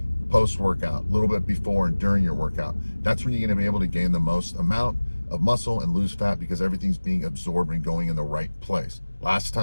Post-workout, a little bit before and during your workout. That's when you're going to be able to gain the most amount of muscle and lose fat, because everything's being absorbed and going in the right place. Worst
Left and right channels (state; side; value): inverted; both; correlation -1.00